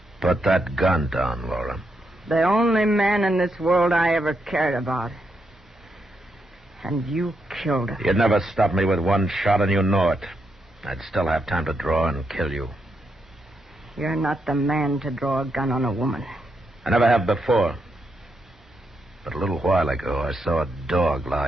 Put that gun down, Laura. The only man in this world I ever cared about. And you killed her. You'd never stop me with one shot, and you know it. I'd still have time to draw and kill you. You're not the man to draw a gun on a woman. I never have before. But a little while ago, I saw a dog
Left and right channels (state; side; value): normal; both; correlation 0.81